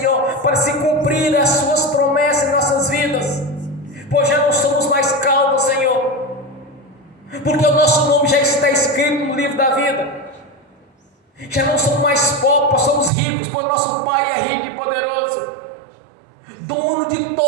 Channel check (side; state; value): left; drops out; at 13.1 s